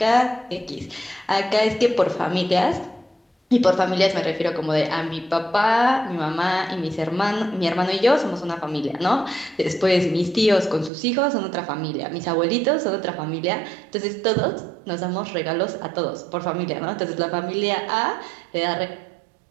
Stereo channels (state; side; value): drops out; left; at 10.9 s